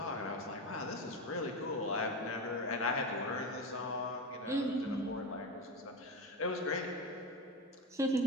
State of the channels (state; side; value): normal; both; correlation 0.19